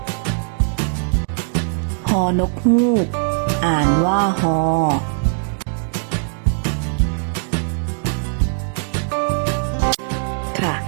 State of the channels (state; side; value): silent; left; digital silence